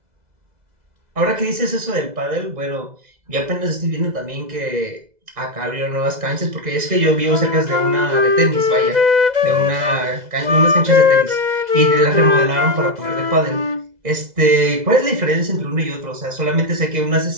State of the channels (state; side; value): late; left; 2.0 ms